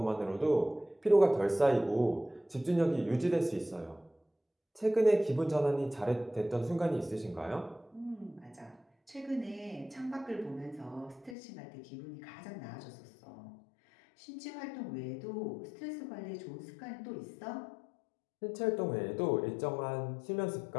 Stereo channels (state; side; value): drops out; right; at 11.4 s